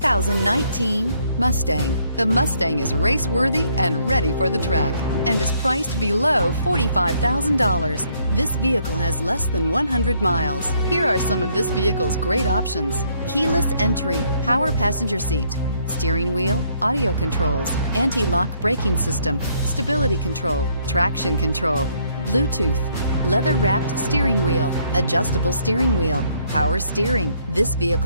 Mustang. The Mustang is race-worthy and ready for the track and is priced below $45,000. This vehicle has less than 100 miles. Here are some of this vehicle's great options: keyless entry, power passenger seat, steering wheel audio controls, anti-lock braking system, stability control, traction control, Bluetooth, leather-wrapped steering wheel, adjustable steering wheel, power steering. This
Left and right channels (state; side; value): inverted; both; correlation -0.68